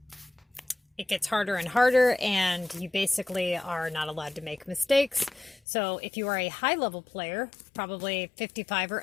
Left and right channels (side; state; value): right; drops out; at 5.6 s